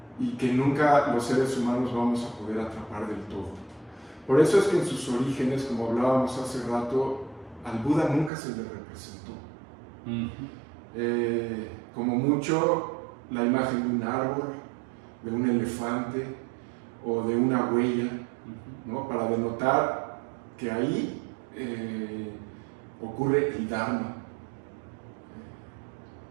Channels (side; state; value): left; drops out; at 8.3 s